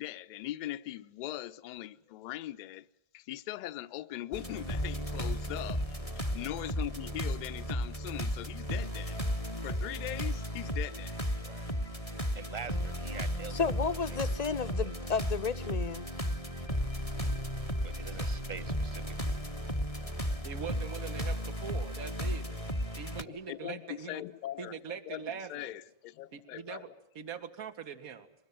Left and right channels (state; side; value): late; right; 1.7 ms